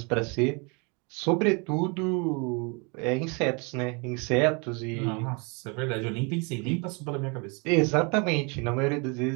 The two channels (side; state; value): left; quieter; 31.6 dB